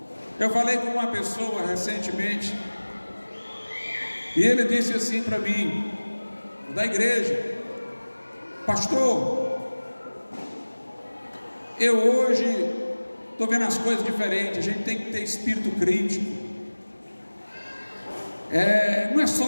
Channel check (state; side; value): inverted; both; correlation -1.00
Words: Eu falei com uma pessoa recentemente, e ele disse assim para mim, da igreja: pastor, eu hoje estou vendo as coisas diferentes, a gente tem que ter espírito crítico. Não é